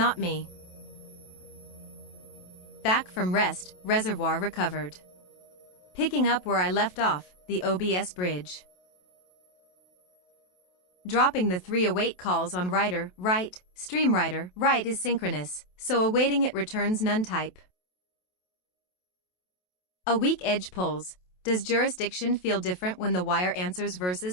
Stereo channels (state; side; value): late; right; 27 ms